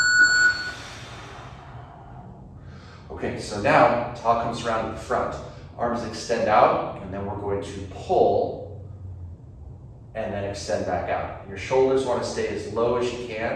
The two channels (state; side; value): identical; both; correlation 1.00